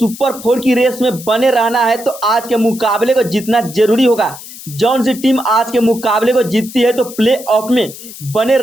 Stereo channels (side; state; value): left; noise; hiss, 15 dB below the sound